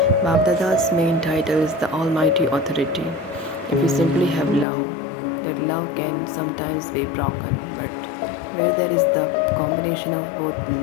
Bab Dada's main title is the Almighty Authority. If you simply have love, that love can sometimes be broken, but where there is the combination of both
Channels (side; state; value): right; drops out; at 4.7 s